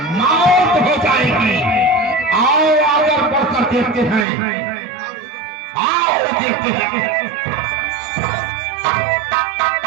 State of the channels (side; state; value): left; drops out; at 4.2 s